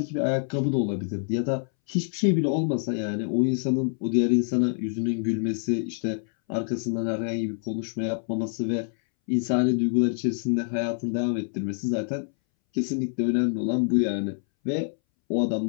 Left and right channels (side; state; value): right; silent; 61 dB below the other